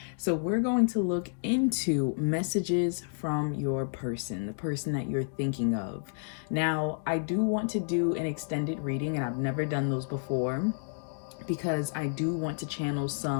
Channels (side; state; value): right; silent; digital silence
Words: So we're going to look into messages from your person, the person that you're thinking of. Now, I do want to do an extended reading, and I've never done those before, because I do want to channel